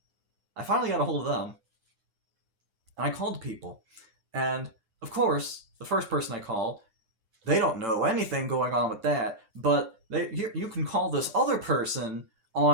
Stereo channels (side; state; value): left; late; 9.9 ms